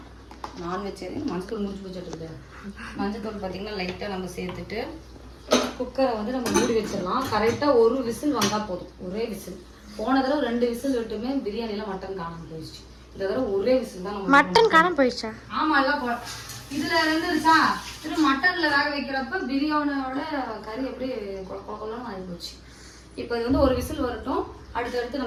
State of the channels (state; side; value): identical; both; correlation 1.00